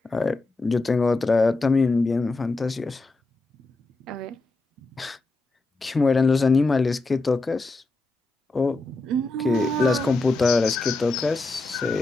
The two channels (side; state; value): right; quieter; 3.2 dB